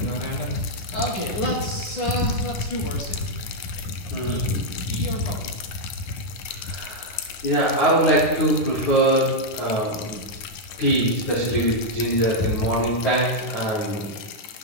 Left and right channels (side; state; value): right; late; 10 ms